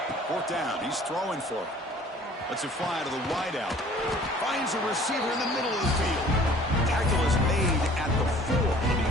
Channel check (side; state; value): both; normal; correlation 0.51